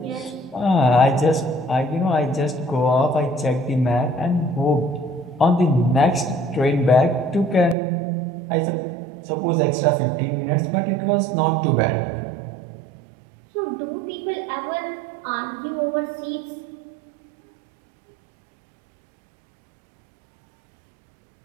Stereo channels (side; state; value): left; drops out; at 7.8 s